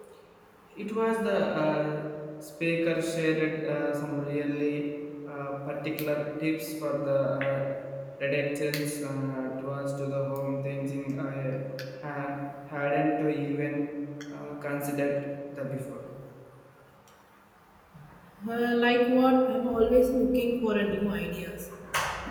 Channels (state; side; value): identical; both; correlation 1.00